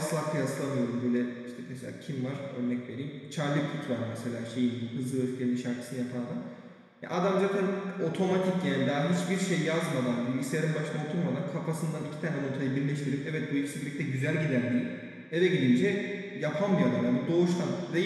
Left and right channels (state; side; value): identical; both; correlation 1.00